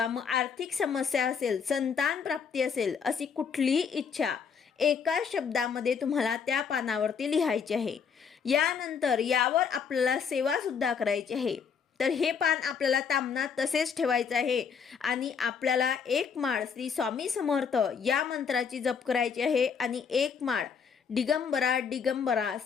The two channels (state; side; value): quieter; right; 6.4 dB